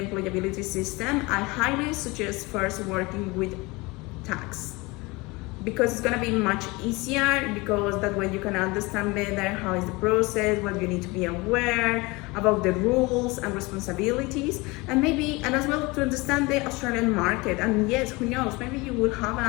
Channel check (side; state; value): right; quieter; 24.2 dB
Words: system, I highly suggest first working with tax, because it's gonna be much easier, because that way you can understand better how is the process, what you need to be aware about the rules and responsibilities, and as well to understand the Australian market. And yes, who knows, maybe you will have